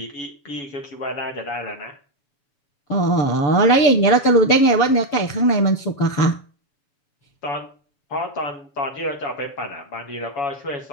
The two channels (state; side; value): late; right; 7.0 ms